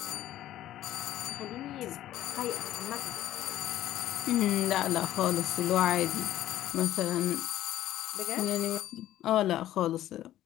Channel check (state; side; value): quieter; right; 13.3 dB